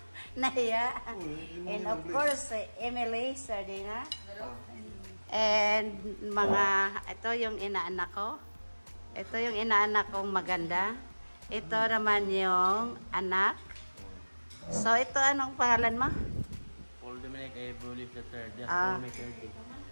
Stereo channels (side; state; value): both; inverted; correlation -1.00